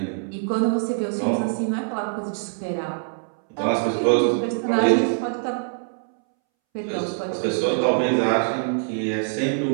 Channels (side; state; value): left; silent; 63 dB below the other